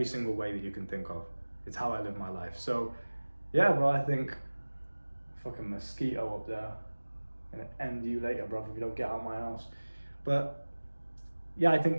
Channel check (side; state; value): both; inverted; correlation -1.00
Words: single way that you can think of. It's how I live my life. So yeah, bro, I think fucking mosquito up there. Gonna end you later, bro, if you don't get out of my house. But yeah, I